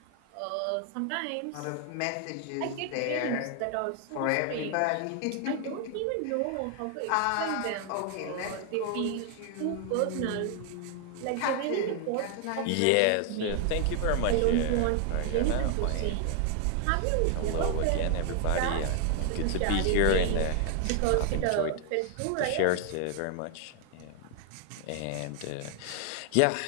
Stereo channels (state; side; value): different; both; correlation 0.00